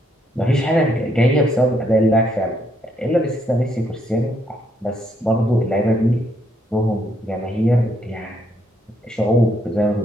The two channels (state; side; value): normal; both; correlation 0.73